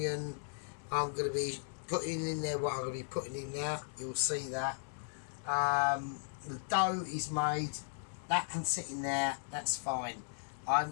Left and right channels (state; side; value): silent; right; 53 dB below the other